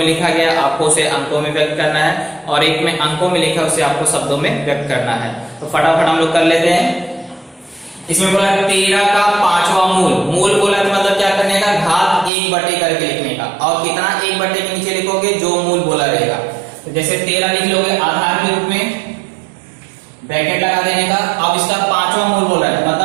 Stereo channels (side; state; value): left; drops out; at 12.3 s